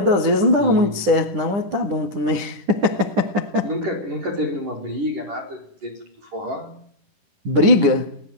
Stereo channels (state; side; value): late; left; 10 ms